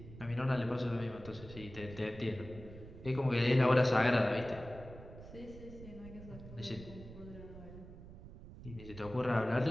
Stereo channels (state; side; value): noise; right; rumble, 15 dB below the sound